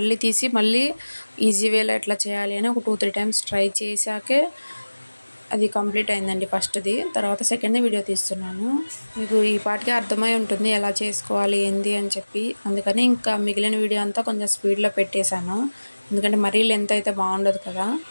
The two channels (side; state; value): both; inverted; correlation -1.00